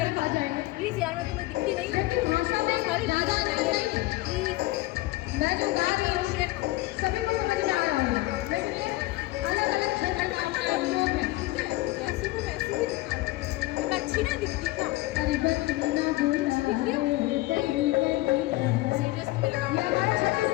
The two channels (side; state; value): right; quieter; 19.3 dB